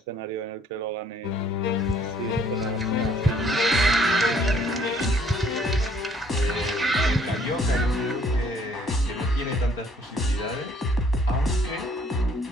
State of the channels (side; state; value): both; normal; correlation 0.62